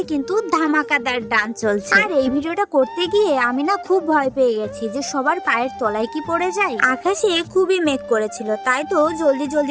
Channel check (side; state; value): both; identical; correlation 1.00